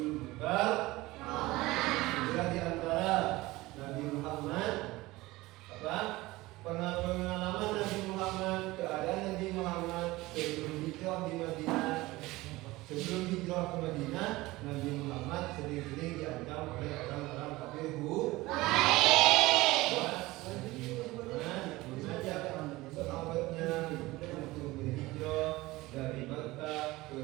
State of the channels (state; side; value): quieter; left; 19.6 dB